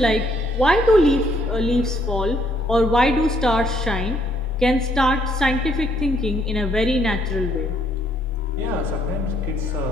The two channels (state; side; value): normal; both; correlation 0.68